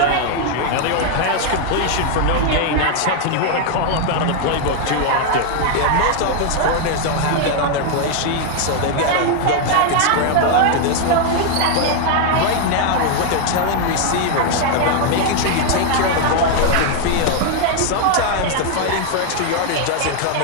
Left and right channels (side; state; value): both; different; correlation 0.00